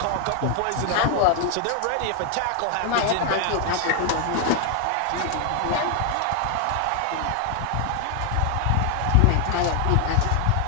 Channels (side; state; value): both; different; correlation 0.00